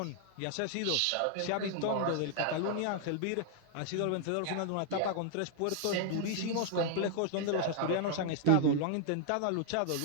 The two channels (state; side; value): different; both; correlation 0.00